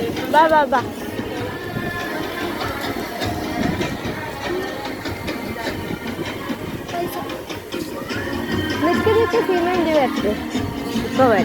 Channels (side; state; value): both; identical; correlation 1.00